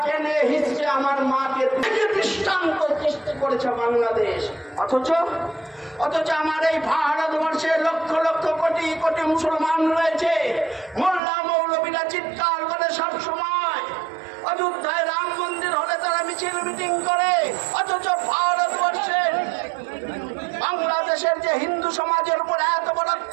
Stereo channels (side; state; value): left; drops out; at 11.2 s